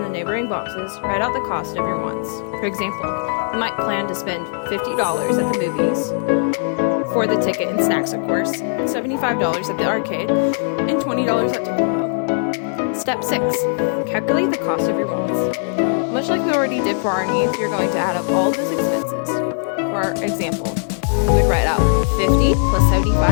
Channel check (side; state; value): right; silent; 60 dB below the other